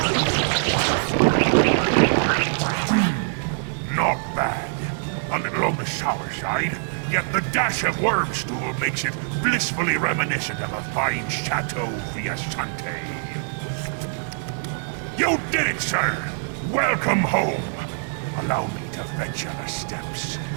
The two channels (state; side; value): silent; left; digital silence